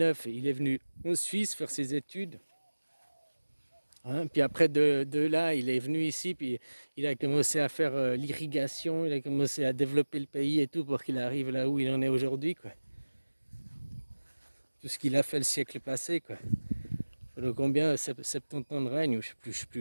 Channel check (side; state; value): both; inverted; correlation -1.00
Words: il est venu en Suisse faire ses études. Hein, puis après, de là, il est venu ici, puis il a commencé à faire l'irrigation, il a commencé à développer le pays et tout pour qu'il arrive là où il en est aujourd'hui, quoi. Tout ce qu'il a fait le siècle passé, quoi. Pendant combien 70 ans de règne, je sais